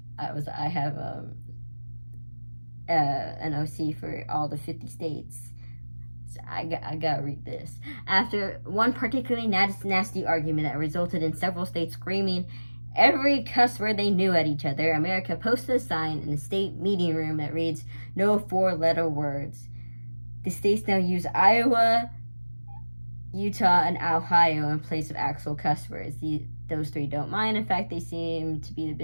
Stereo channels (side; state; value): both; inverted; correlation -1.00